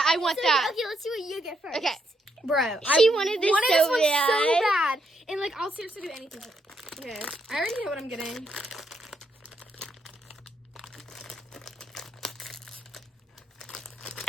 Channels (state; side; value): normal; both; correlation 0.77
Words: I want So, that. okay, let's see what you get first. Okay. Bro, She wanted this so one bad. so bad. And like, I'll seriously do anything. Okay. I already know what I'm getting.